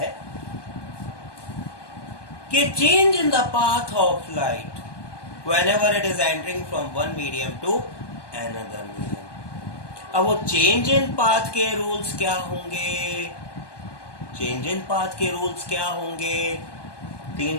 कि change in the path of light whenever it is entering from one medium to another medium. अब वो चेंज इन पाथ के रूल्स क्या होंगे? चेंज इन पाथ के रूल्स क्या होंगे? तीन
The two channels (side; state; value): right; late; 1.2 ms